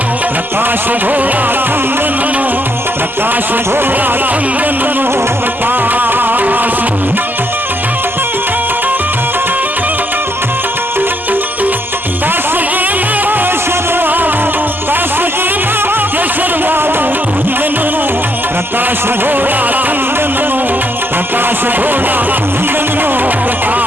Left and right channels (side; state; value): both; normal; correlation 0.73